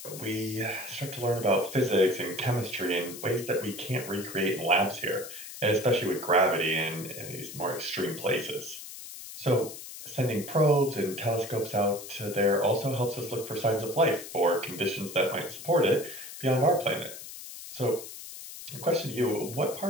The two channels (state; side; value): noise; left; hiss, 12 dB below the sound